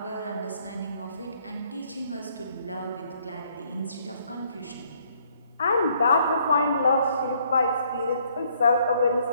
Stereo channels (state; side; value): inverted; both; correlation -0.66